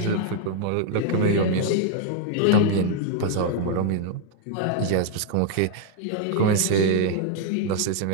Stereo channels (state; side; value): different; both; correlation 0.00